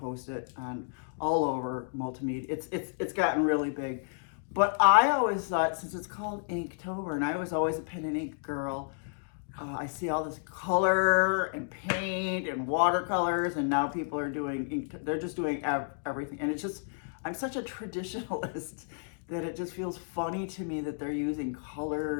it on all over multimedia. It's gotten really big, but I always thought, since it's called Inktober, and I was always a pen and ink girl, I see all this color and paint and watercolors, and now people are doing ink. They're just doing everything, and it's just, I'm such a traditionalist that it just feels funny to me that they're using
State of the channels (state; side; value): silent; right; digital silence